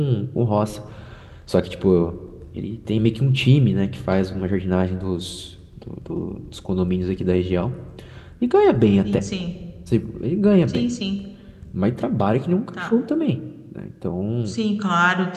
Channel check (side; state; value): both; identical; correlation 1.00